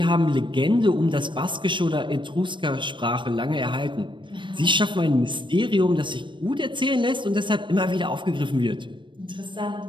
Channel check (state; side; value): late; left; 0.23 ms